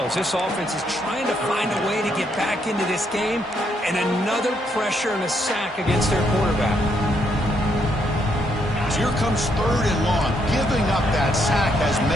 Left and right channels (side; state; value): both; normal; correlation 0.75